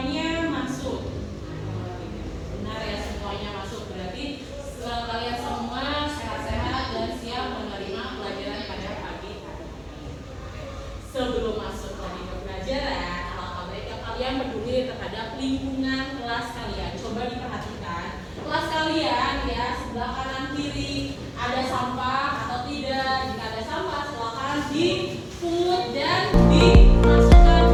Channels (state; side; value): identical; both; correlation 1.00